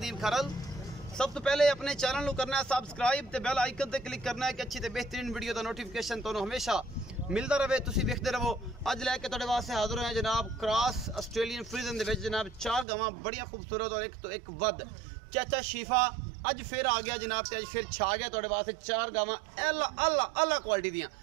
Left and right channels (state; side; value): drops out; left; at 12.9 s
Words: खरल। सब तो पहले अपने चैनल को करना है सबसक्राइब ते बेल आइकन ते क्लिक करना है कि अच्छी ते बेहतरीन वीडियो का नोटिफिकेशन तुहानू हमेशा मिलता रहे, तुसी वेखदे रहो। अज लैके तुहाडे वास्ते हाजिर हैं जनाब क्रॉस ऑस्ट्रेलियन फ्रीजन दे विच जनाब 4 गावां बड़िया खूबसूरत और एक तो एक वध। चाचा शीफा अज फिर आ गया जनाब, अज फिर छा गया तुहाडे वास्ते 4 गावां अल्लाह क्वालिटी दियां,